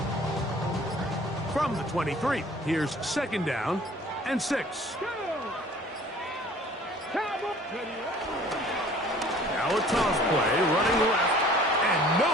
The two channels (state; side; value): normal; both; correlation 0.51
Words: From the 23, here's second down and 6. Now a toss play, running left, and no